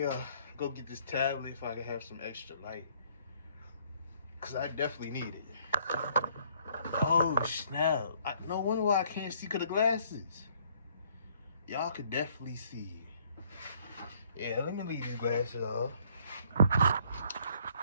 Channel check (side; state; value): both; inverted; correlation -0.63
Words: go get this tablet if I can have some extra light. Cause I definitely need it. Oh snap. No wonder why I can't see cause the glasses. Y'all could definitely see. Yeah, let me leave these glasses off.